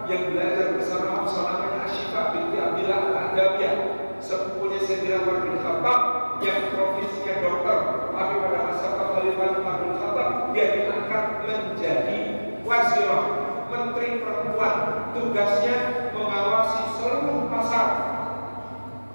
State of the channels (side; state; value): both; inverted; correlation -1.00